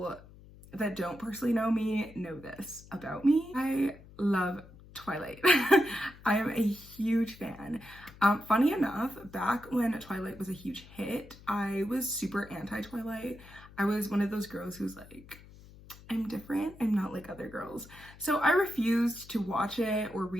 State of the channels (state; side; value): noise; left; hum, 21 dB below the sound